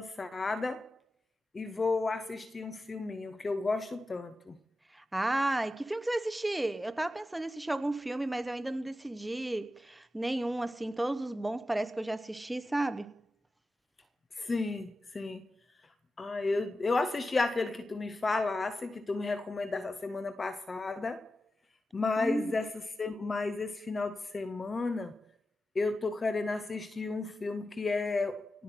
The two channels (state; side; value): normal; both; correlation 0.92